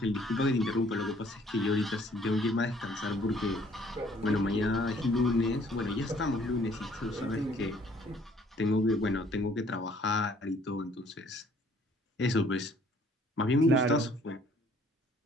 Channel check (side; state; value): both; normal; correlation 0.59